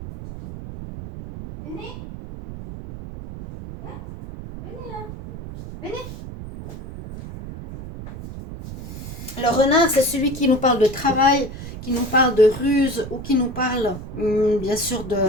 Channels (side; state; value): right; noise; rumble, 11 dB below the sound